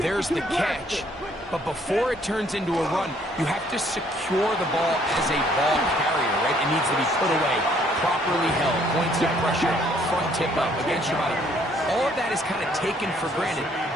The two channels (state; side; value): normal; both; correlation 0.64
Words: the catch, but before it turns into a run, you have to secure the ball as a ball carrier, right? It needs to be put away, properly held, points of pressure, front tip up against your body. All of that is kind of taken for granted.